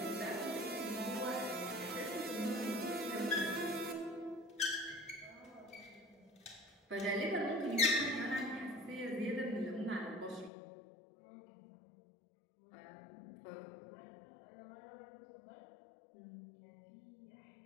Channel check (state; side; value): drops out; right; at 10.5 s